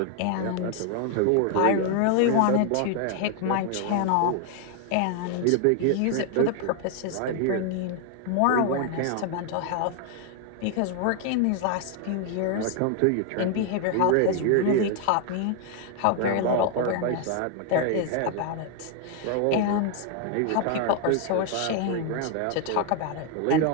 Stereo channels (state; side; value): different; both; correlation 0.00